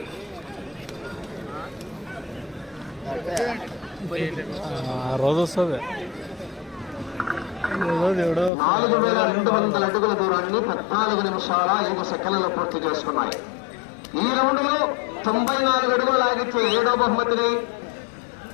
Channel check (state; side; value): drops out; right; at 8.5 s